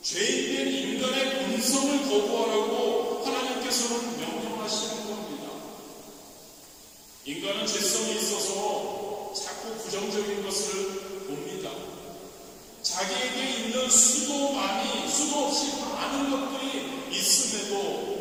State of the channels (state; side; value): identical; both; correlation 1.00